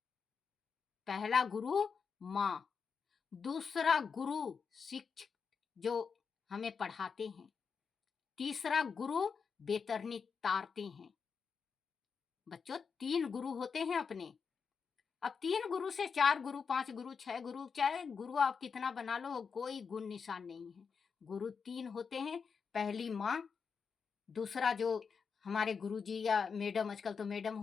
पहला गुरु माँ, दूसरा गुरु शिक्षक जो हमें पढ़ाते हैं, तीसरा गुरु बेतरनी तारते हैं। बच्चों 3 गुरु होते हैं अपने। अब 3 गुरु से 4 गुरु, 5 गुरु, 6 गुरु, चाहे गुरु आप कितना बना लो, कोई गुण निशान नहीं है। गुरु 3 होते हैं। पहली माँ, दूसरा जो हमारे गुरुजी या मैडम, आजकल तो मैडम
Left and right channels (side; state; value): right; quieter; 5.8 dB